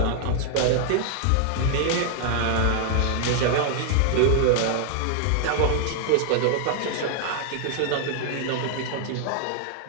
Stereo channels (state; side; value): different; both; correlation 0.00